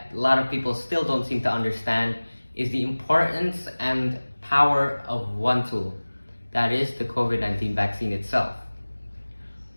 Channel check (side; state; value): both; inverted; correlation -1.00